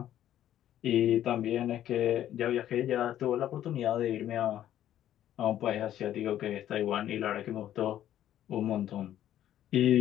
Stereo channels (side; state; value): right; quieter; 11.8 dB